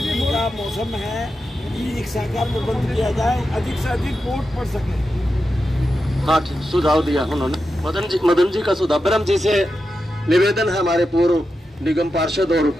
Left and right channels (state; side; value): normal; both; correlation 0.89